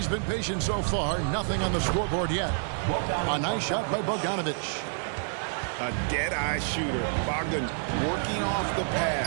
been patient so far. Nothing on the scoreboard yet. A nice shot by Bogdanovic. A dead-eye shooter. Bogdan working off the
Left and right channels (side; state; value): left; silent; 59 dB below the other